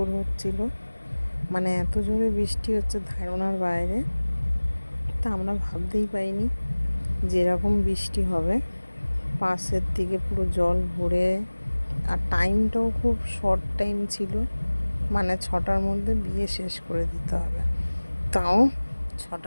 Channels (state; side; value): inverted; both; correlation -1.00